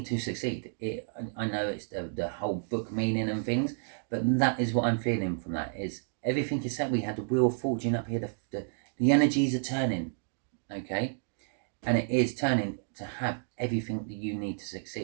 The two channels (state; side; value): silent; left; digital silence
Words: to succeed. I know it's the whole book meaning and things, but that is what I'm feeling from that. Is everything is set. We had the Wheel of Fortune up here. The energies are turning, okay, and it is turning to have everything that you need to